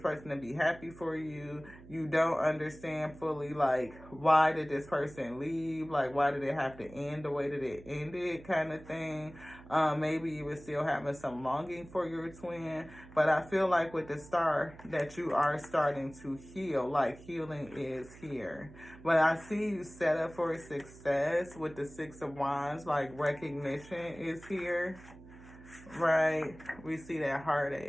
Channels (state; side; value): noise; right; hum, 19 dB below the sound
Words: to be happy for you. You don't understand fully, like, why did this person leave? Like, why did it have to end the way that it ended, kind of thing. Maybe you were still having some longing for your twin, but I feel like with the star that you are starting to heal, like healing is here. But I see you set up for success with the 6 of Wands, like recognition is here, right? We see that